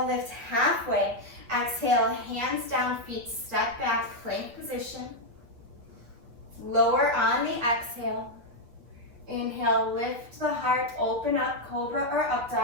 lift halfway. Exhale, hands down, feet step back, plank position. Lower on the exhale. Inhale, lift the heart, open up, cobra or up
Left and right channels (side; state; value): left; late; 8.4 ms